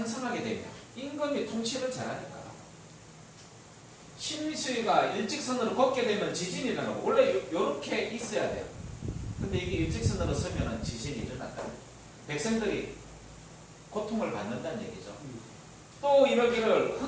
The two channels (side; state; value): both; identical; correlation 1.00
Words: 되며 임금이 통치를 잘하니까. 심수위가 일직선으로 걷게 되면 지진이 일어나고 원래 이렇게 있어야 돼요. 근데 이게 일직선으로 서면 지진이 일어난다. 백성들이 고통을 받는다는 얘기죠. 또 이러기를